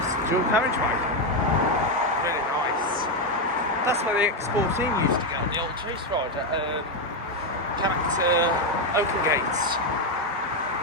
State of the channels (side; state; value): both; normal; correlation 0.06